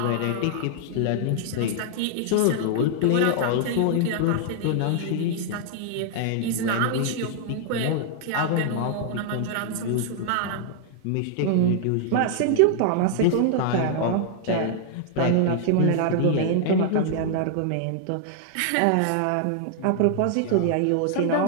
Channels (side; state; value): both; different; correlation -0.01